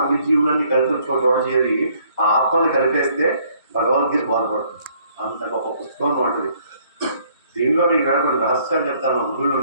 అన్ని జీవులన్నీ కలిపి చోట చేరి ఆ ఆత్మని కలిపేస్తే భగవద్గీత బాధపడుతుంది. అంత గొప్ప పుస్తకం ఉంటుంది. దీనిలో మీకు కొన్ని రహస్యాలు చెప్తాను. గురువులు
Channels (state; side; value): inverted; both; correlation -0.64